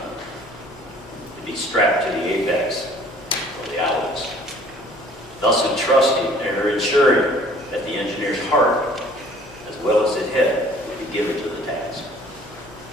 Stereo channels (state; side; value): normal; both; correlation 0.53